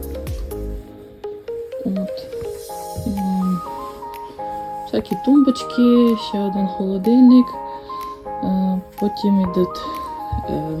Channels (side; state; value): both; identical; correlation 1.00